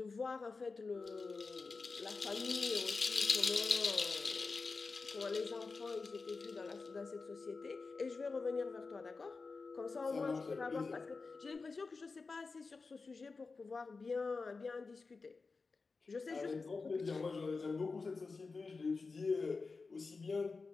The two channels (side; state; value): right; quieter; 4.2 dB